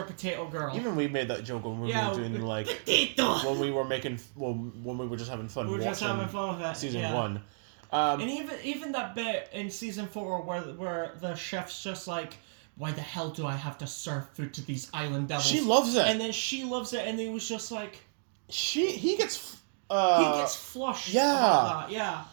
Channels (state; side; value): silent; left; digital silence